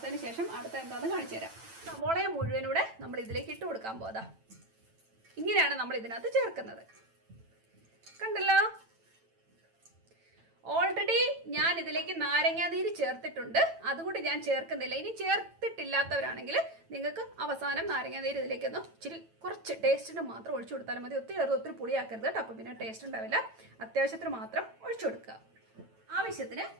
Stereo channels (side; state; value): left; late; 9.0 ms